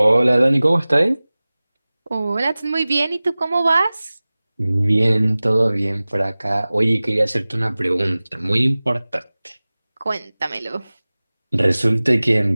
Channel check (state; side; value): inverted; both; correlation -0.99